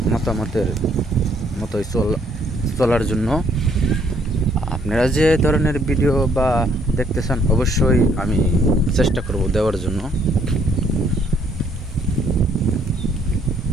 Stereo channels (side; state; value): both; normal; correlation 0.66